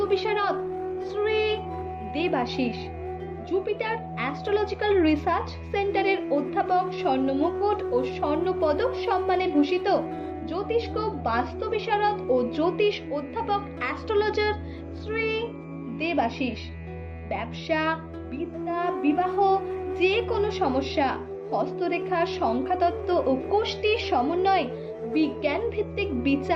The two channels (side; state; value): both; identical; correlation 1.00